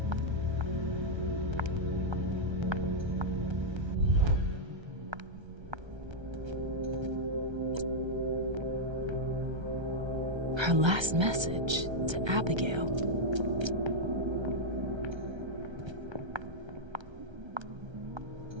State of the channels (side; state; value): left; late; 1.3 ms